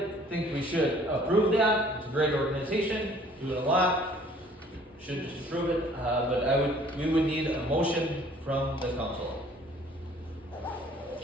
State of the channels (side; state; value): both; normal; correlation 0.55